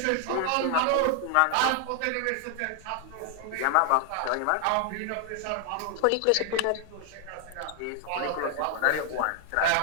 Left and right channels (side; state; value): both; different; correlation 0.00